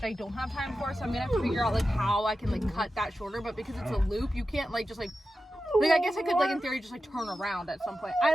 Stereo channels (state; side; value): normal; both; correlation 0.92